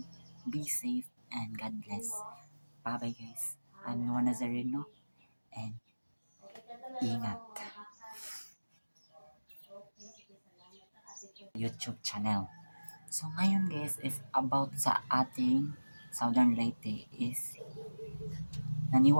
be safe and God bless. Bye bye guys. I'm Noah Nazareno and ingat. YouTube channel. So ngayon guys is about sa ating Southern Leyte is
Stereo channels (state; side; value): inverted; both; correlation -1.00